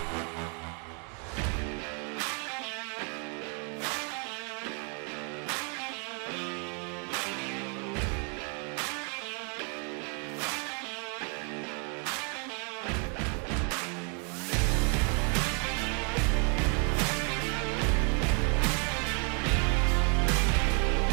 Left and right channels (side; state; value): left; quieter; 38.1 dB